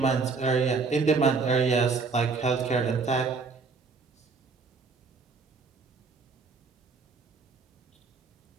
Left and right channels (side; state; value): left; quieter; 4.6 dB